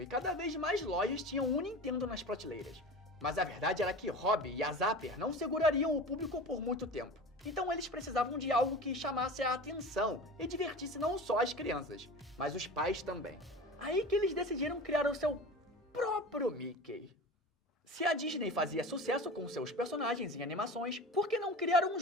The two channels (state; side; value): normal; both; correlation 0.33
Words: e cada vez mais lojas tinham um Nintendo nas prateleiras. Mas a verdade era que Robbie e a Zapper não segurariam o público por muito tempo. Então eles precisavam de algo que chamasse a atenção e divertisse não só as crianças, mas os pais também. Aí que eles decidiram criar o seu próprio Mickey. Se a Disney fazia sucesso com seus personagens em animações, por que não criar um